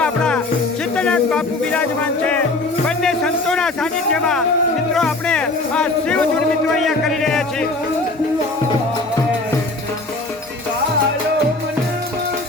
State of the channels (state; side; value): quieter; right; 3.0 dB